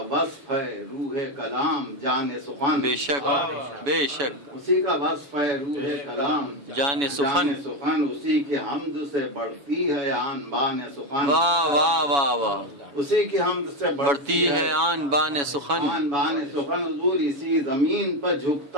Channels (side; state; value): left; late; 7.1 ms